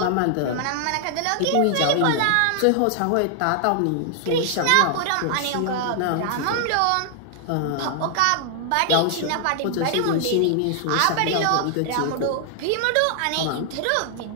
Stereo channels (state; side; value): different; both; correlation 0.00